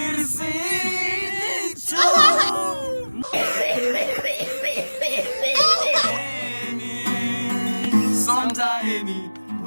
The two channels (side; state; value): both; inverted; correlation -1.00